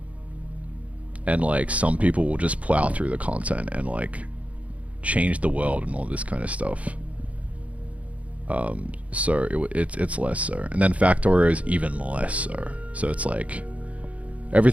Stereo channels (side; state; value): left; late; 0.066 ms